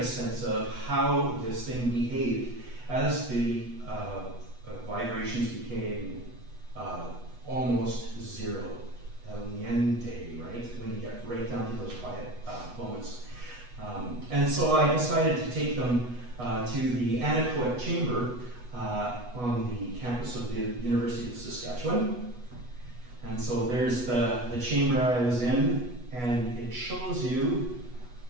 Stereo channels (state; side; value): late; left; 8.1 ms